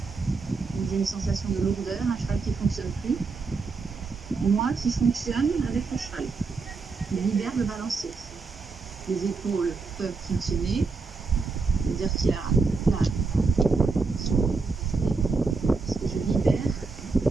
Donc j'ai une sensation de lourdeur, un cheval qui ne fonctionne plus. Moi qui fonctionne avec le cheval. Je libère le balancier. Les épaules peuvent fonctionner. C'est-à-dire qu'il y a là, parce que je libère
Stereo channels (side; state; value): left; quieter; 4.3 dB